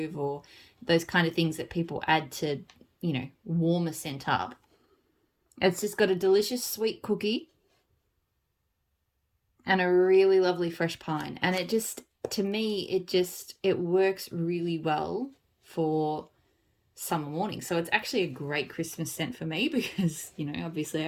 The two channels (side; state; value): both; identical; correlation 1.00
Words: or those kind of things that people add to, warm a scent up. It's just got a delicious sweet cookie and a really lovely fresh pine. And it just, to me, it works really well for summer morning. So it's actually a great Christmas scent for me because, obviously